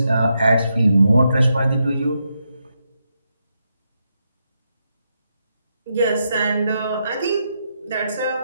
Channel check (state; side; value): inverted; both; correlation -0.83